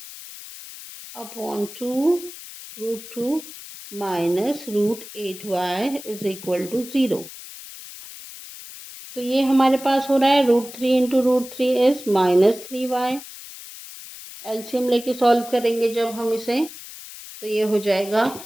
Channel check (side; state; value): left; noise; hiss, 14 dB below the sound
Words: upon 2 root 2 minus root 8y is equal to 0। तो ये हमारे पास हो रहा है root 3 into root 3 is minus 3y। LCM लेके सॉल्व करेंगे जब हम इसे, तो ये हो जाएगा,